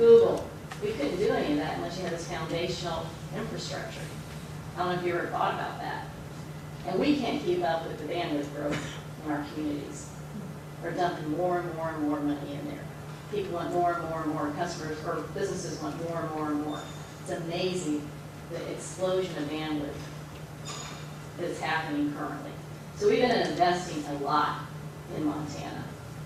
We couldn't do any of that unless you had this foundational infrastructure. I don't know if you ever thought about that. And we can't keep up with the bandwidth growth in our communities. We're dumping more and more and more money in there. People want more and more and more. Customers or businesses want more and more and more. It's amazing the explosion of bandwidth that's happening currently. So we've been investing a lot in Montana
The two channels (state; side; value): identical; both; correlation 1.00